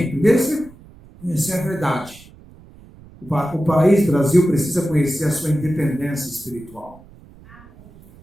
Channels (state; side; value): noise; right; rumble, 23 dB below the sound